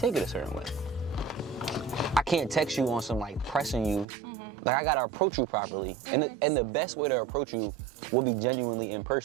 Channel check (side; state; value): left; drops out; at 4.0 s